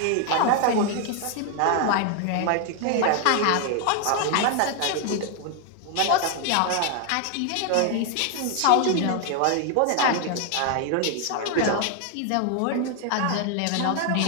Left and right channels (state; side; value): different; both; correlation 0.01